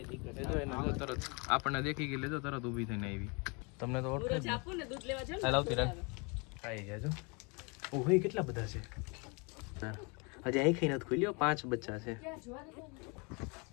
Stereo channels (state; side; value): quieter; right; 31.3 dB